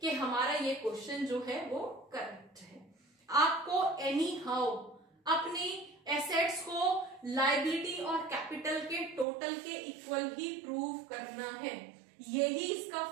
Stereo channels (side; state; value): left; drops out; at 9.2 s